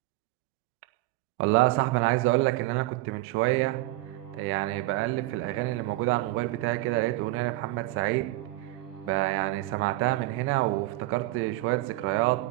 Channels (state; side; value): quieter; left; 18.9 dB